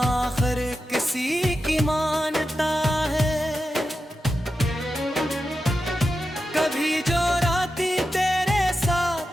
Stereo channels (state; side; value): normal; both; correlation 0.90